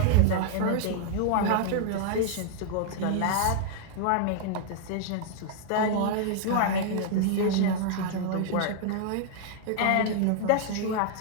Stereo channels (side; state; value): both; different; correlation -0.01